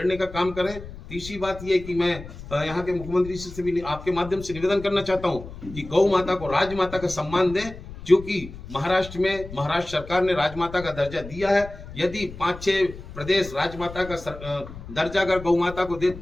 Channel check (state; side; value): noise; left; rumble, 14 dB below the sound